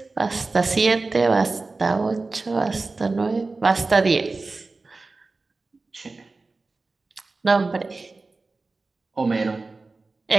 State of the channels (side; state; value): left; quieter; 3.6 dB